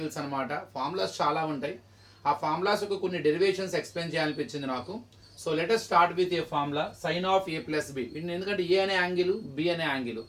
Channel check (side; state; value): both; identical; correlation 1.00